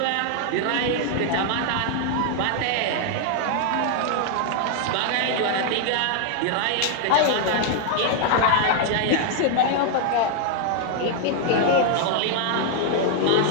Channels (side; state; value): both; different; correlation 0.00